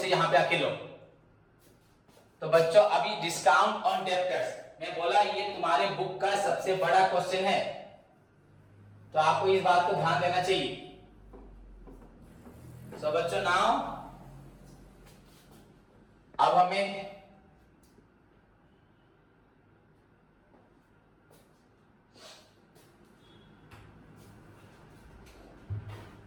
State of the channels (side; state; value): both; identical; correlation 1.00